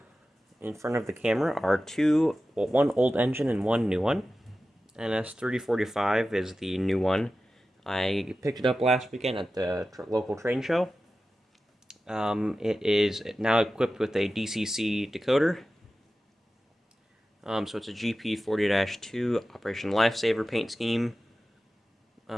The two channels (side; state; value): both; normal; correlation 0.94